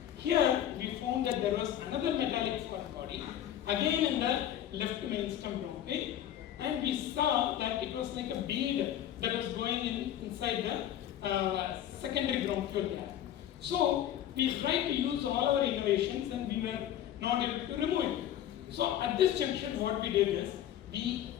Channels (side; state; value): right; quieter; 11.3 dB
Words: Here we found that there was another metallic foreign body, again in the left mainstem bronchi, and we saw that it was like a bead that was going inside the secondary bronchiole there. So we tried to use all our innovations and we were not able to remove it. So at this junction what we did is, we